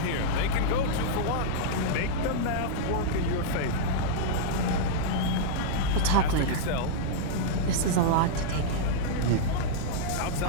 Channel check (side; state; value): both; different; correlation -0.02